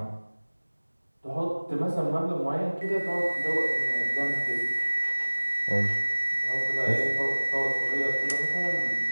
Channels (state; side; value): inverted; both; correlation -1.00